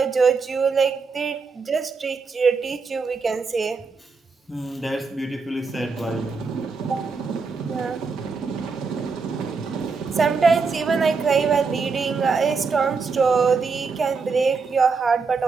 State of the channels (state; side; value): quieter; left; 4.8 dB